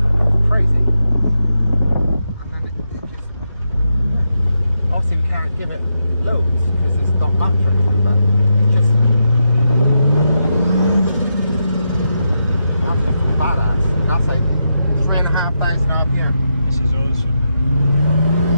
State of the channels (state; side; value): inverted; both; correlation -0.84